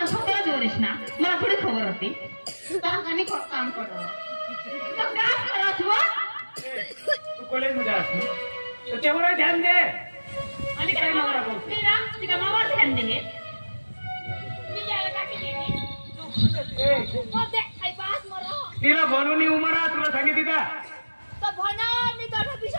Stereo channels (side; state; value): both; inverted; correlation -1.00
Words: स्वतःला जोरेश ना मला थोडी खबर होती काम करतो तू कॉलेजमध्ये असतो तर तेवढं ध्यान दे आणि काय नवरा करतो तिला मावाला ध्यान दे तिला बनवून उमरा तुला सांगितली का